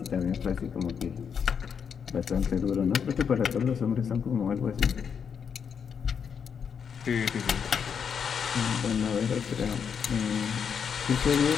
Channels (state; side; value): quieter; right; 7.0 dB